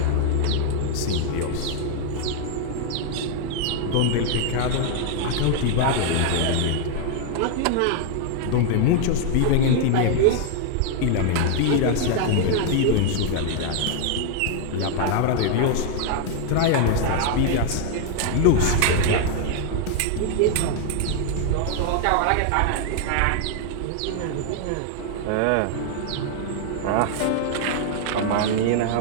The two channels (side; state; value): both; different; correlation 0.00